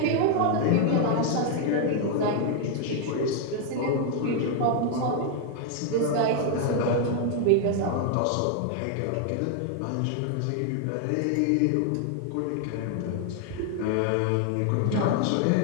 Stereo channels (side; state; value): both; different; correlation 0.00